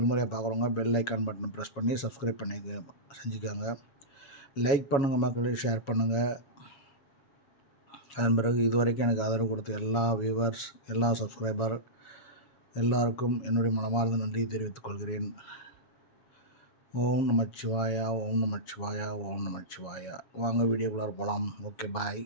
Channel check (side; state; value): right; late; 7.2 ms